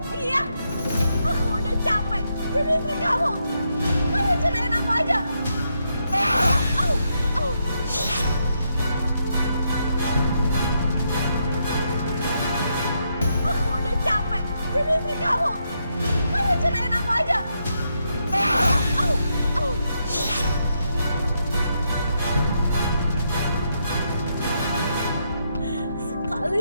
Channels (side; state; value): both; inverted; correlation -0.80